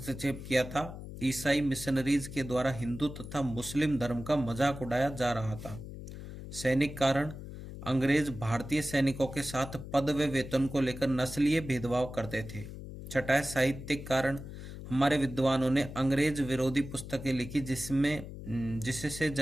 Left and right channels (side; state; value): left; noise; hum, 11 dB below the sound